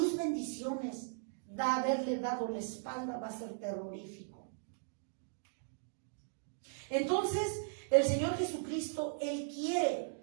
bendiciones, haberle dado la espalda, va a ser terrorífico. Entonces, el Señor Jesucristo, Él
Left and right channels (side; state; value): left; silent; digital silence